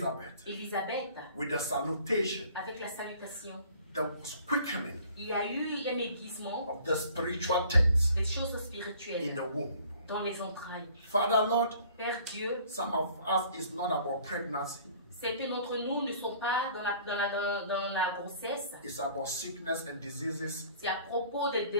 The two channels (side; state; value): both; inverted; correlation -0.52